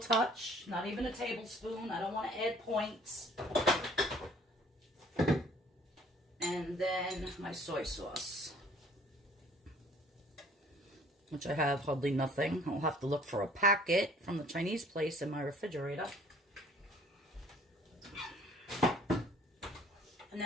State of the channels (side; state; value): both; normal; correlation 0.56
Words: not even a tablespoon. I don't want to add points. And then my soy sauce, which I have hardly nothing. I'll have to look for a packet from the Chinese place in my refrigerator. And